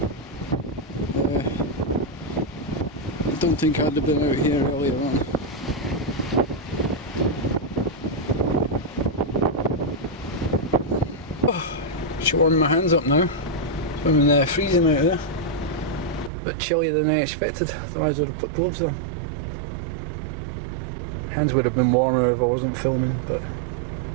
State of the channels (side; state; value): left; drops out; at 16.3 s